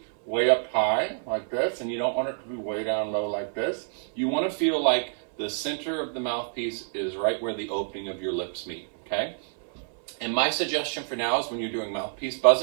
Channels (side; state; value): left; silent; 60 dB below the other